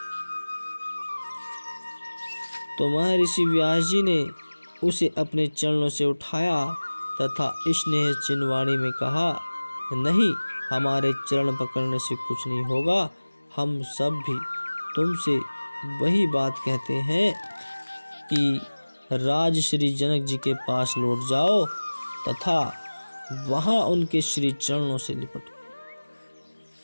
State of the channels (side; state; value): both; inverted; correlation -1.00